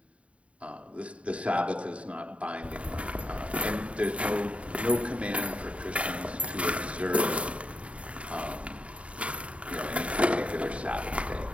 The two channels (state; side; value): late; left; 0.063 ms